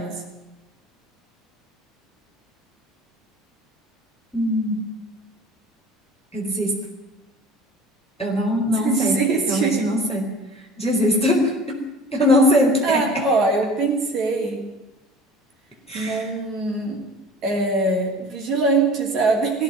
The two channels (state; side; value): normal; both; correlation 0.43